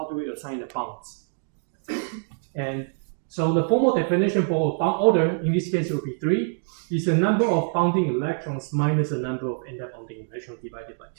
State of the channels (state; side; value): silent; left; digital silence